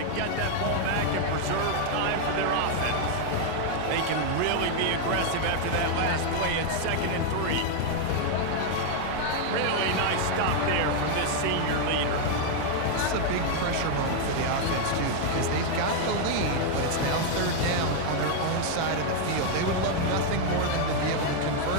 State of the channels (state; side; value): different; both; correlation 0.00